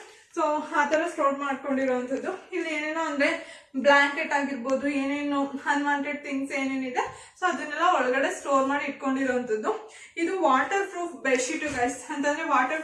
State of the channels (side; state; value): both; identical; correlation 1.00